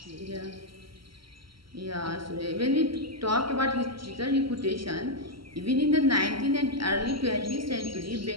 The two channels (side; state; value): left; late; 0.74 ms